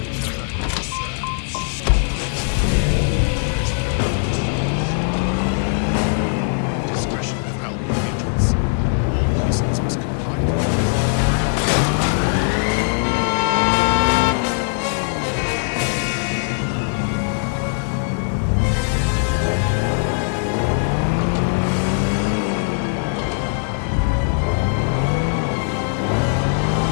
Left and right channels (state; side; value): silent; right; 66 dB below the other